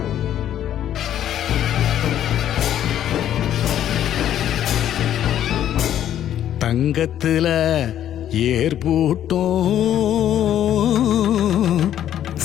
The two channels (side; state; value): right; quieter; 11.0 dB